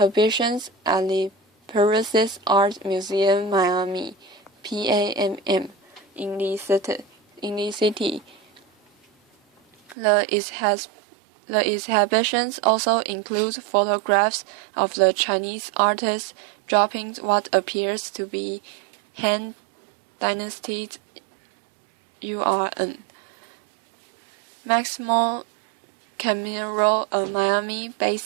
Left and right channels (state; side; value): drops out; left; at 10.0 s